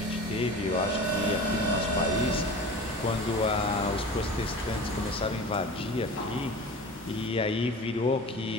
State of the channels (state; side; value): normal; both; correlation 0.36